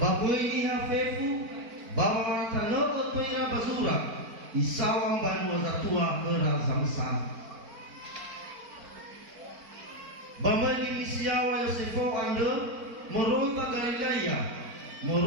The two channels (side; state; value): left; late; 4.5 ms